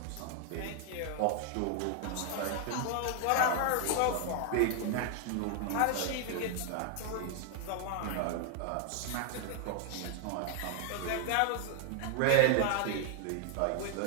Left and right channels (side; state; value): both; different; correlation 0.00